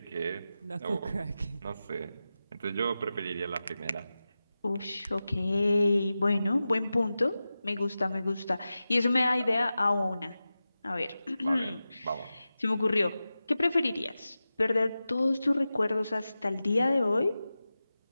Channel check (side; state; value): both; inverted; correlation -0.94